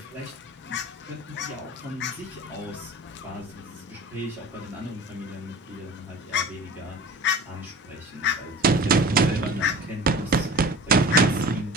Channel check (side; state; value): both; normal; correlation 0.38